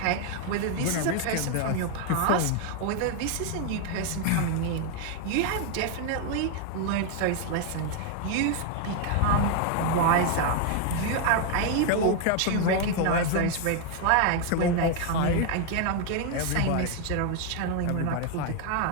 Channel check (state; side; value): different; both; correlation 0.00